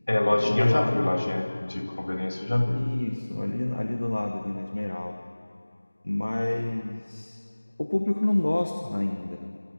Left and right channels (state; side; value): inverted; both; correlation -1.00